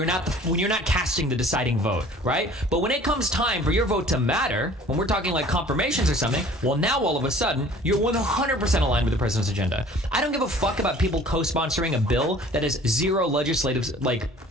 not casting the deciding vote, right? But when it comes time for your vote to matter, when we're talking like confirmations or something, well, now all of a sudden you're 100% aligned with the president's agenda. I don't give a fuck about people co-sponsoring a bill that has zero legislative like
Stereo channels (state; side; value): normal; both; correlation 0.49